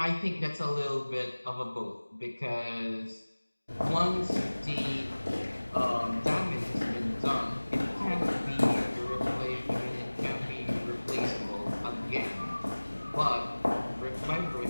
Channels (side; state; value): both; inverted; correlation -1.00